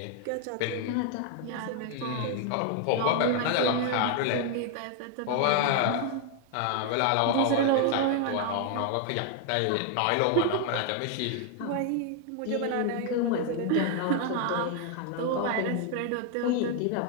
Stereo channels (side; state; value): both; different; correlation 0.00